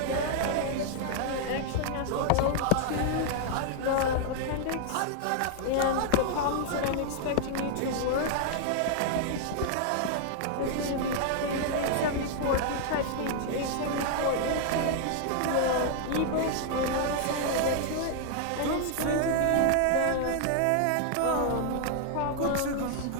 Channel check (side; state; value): both; different; correlation -0.01